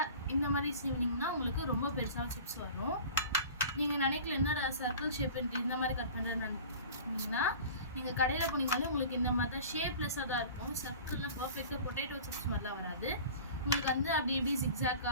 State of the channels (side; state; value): both; inverted; correlation -0.40